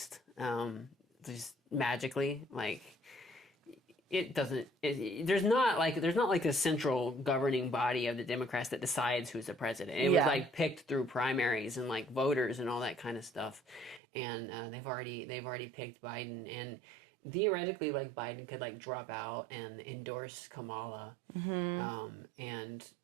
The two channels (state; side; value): drops out; left; at 14.0 s